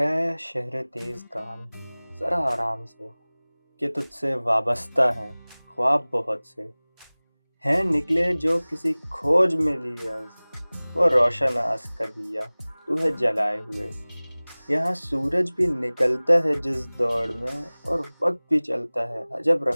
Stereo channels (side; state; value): both; inverted; correlation -1.00